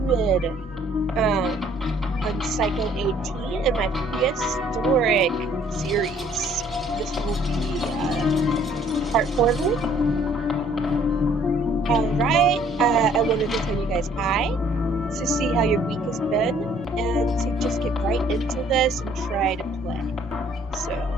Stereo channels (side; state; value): both; normal; correlation 0.60